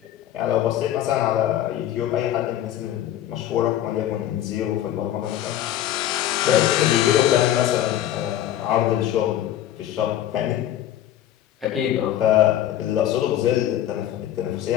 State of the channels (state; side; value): quieter; right; 12.1 dB